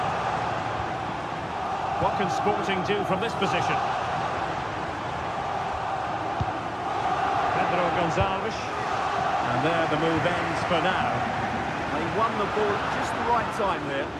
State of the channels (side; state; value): both; identical; correlation 1.00